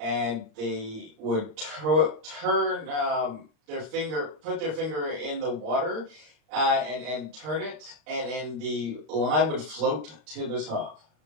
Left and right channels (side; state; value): left; late; 39 ms